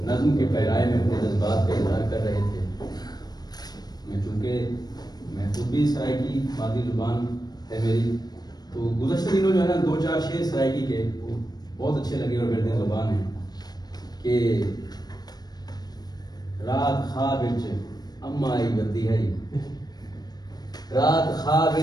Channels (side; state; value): right; late; 0.19 ms